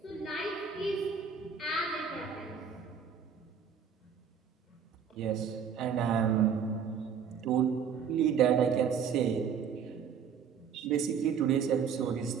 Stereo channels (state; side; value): quieter; left; 7.1 dB